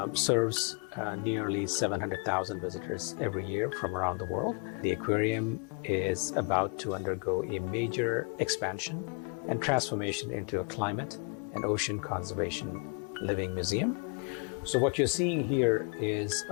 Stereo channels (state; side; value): quieter; right; 39.0 dB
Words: serves nearly 700,000 visitors every year from around the world. The aquarium is about to undergo a major expansion and transformation into a climate and ocean conservation living museum. So what you're seeing here is